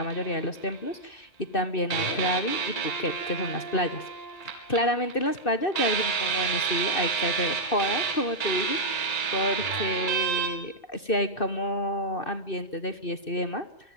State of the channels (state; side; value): late; right; 2.6 ms